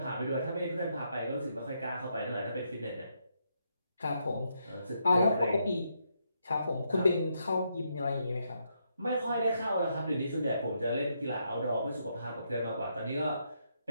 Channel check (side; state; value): both; inverted; correlation -0.78